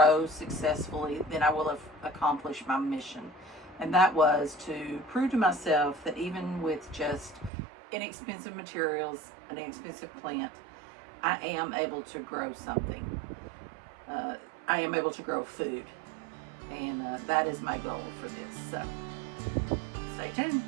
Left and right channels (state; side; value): drops out; left; at 7.5 s